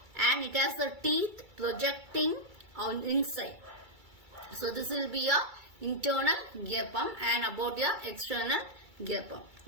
and it has the teeth projecting on inside. So this will be your internal gear pump, and about your external gear pump.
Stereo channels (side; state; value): left; late; 2.3 ms